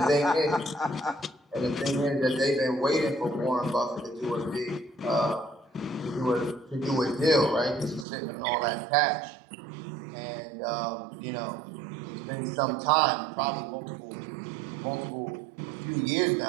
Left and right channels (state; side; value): drops out; left; at 8.1 s